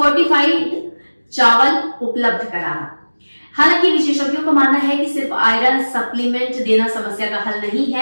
चावल उपलब्ध कराना। हालांकि विशेषज्ञों का मानना है कि सिर्फ आयरन सप्लीमेंट देना समस्या का हल नहीं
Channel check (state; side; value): inverted; both; correlation -1.00